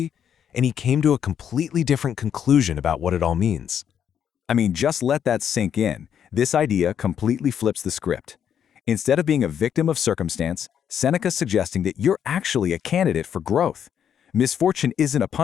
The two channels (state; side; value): quieter; right; 8.7 dB